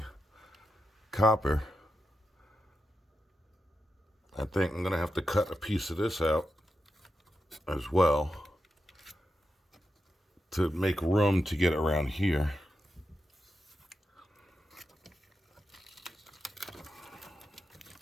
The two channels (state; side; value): normal; both; correlation 0.87